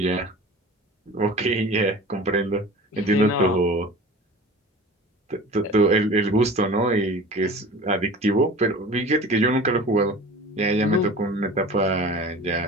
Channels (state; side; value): normal; both; correlation 0.38